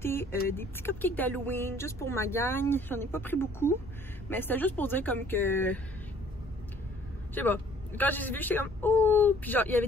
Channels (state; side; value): normal; both; correlation 0.57